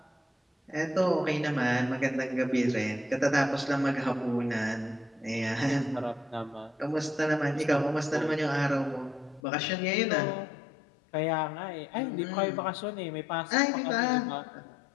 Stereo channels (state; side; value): drops out; right; at 9.4 s